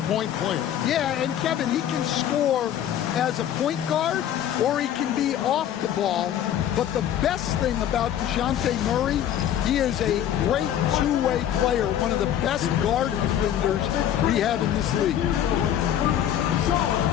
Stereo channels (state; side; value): quieter; right; 10.6 dB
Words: player. Yeah, and Kevin, he can score as a point guard or he can be off the ball. But the best thing about DeJounte Murray, he is a great two-way player, one of the best guard defenders we have in this league.